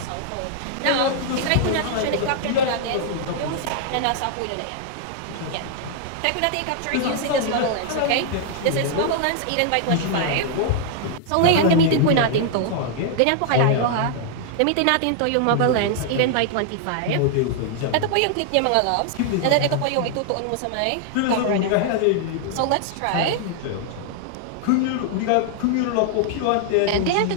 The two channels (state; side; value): different; both; correlation -0.01